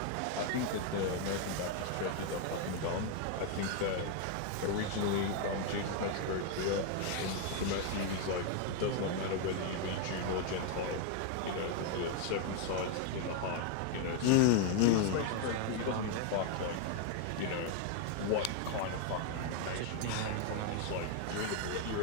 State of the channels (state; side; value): different; both; correlation 0.01